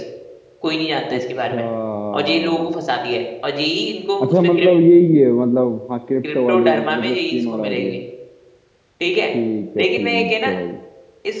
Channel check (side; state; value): both; identical; correlation 1.00